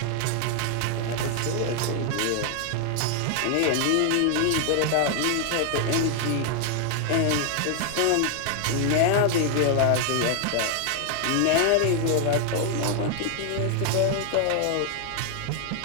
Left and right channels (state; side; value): different; both; correlation 0.00